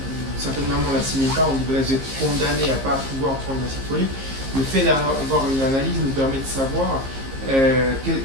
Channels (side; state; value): left; late; 15 ms